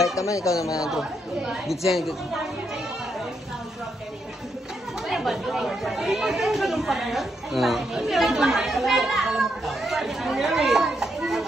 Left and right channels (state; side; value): normal; both; correlation 0.79